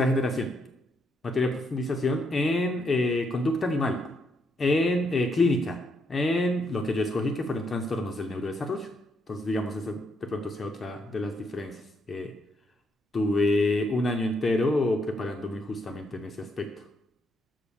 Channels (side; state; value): both; normal; correlation 0.76